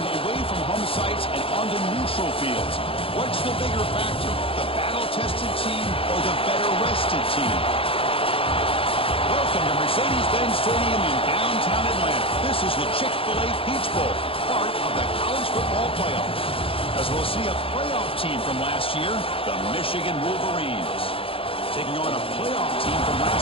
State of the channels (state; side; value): late; right; 0.27 ms